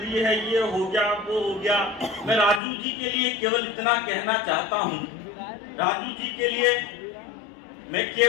है, ये हो गया वो हो गया। मैं राजू जी के लिए केवल इतना कहना चाहता हूँ, राजू जी के लिए मैं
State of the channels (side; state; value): right; drops out; at 2.6 s